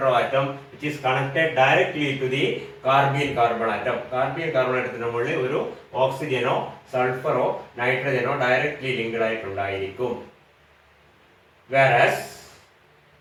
atom which is connected directly to the carbene carbon atom. Carbene carbon atomത്തിന് മുകളിൽ ഒരു ഓക്സിജനോ സൾഫറോ നൈട്രജനോ ഡയറക്ട്ലി ലിങ്ക്ഡ് ആയിട്ടുണ്ടായിരിക്കും. Whereas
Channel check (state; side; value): identical; both; correlation 1.00